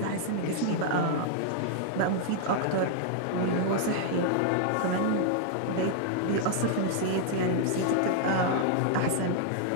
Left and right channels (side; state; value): both; different; correlation -0.01